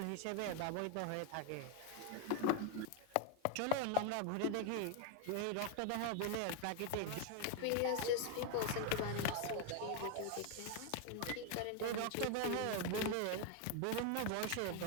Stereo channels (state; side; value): different; both; correlation 0.01